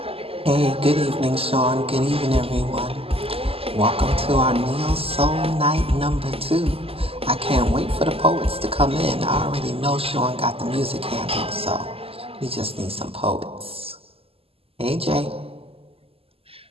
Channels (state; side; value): late; left; 0.28 ms